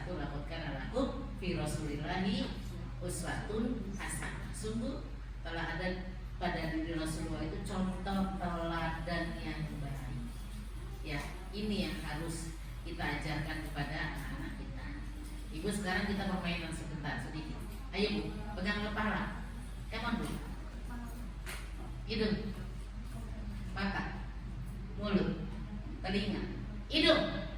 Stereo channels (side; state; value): both; identical; correlation 1.00